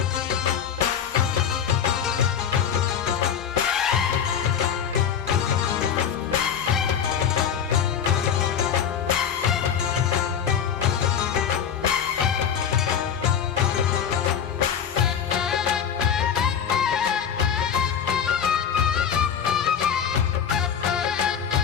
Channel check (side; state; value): right; quieter; 8.2 dB